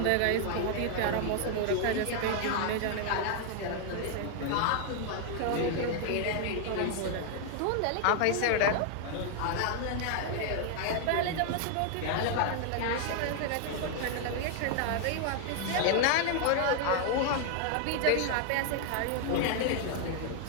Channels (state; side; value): different; both; correlation 0.00